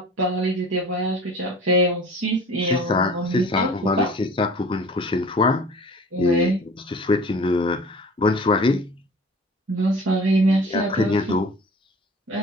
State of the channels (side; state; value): both; normal; correlation 0.44